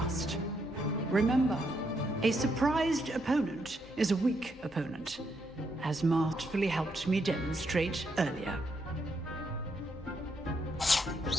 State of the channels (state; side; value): normal; both; correlation 0.77